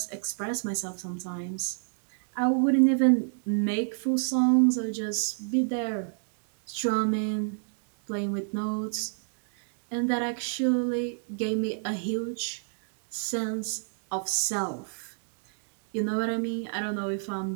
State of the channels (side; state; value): left; silent; digital silence